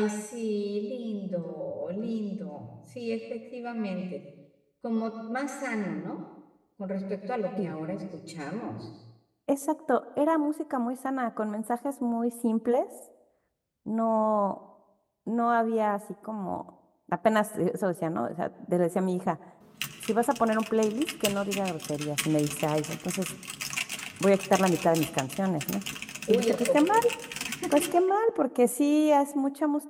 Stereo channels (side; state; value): both; identical; correlation 1.00